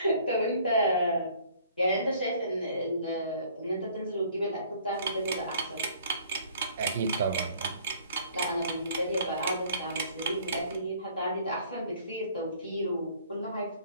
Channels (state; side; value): inverted; both; correlation -0.56